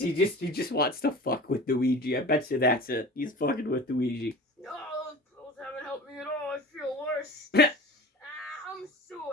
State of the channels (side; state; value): both; normal; correlation 0.38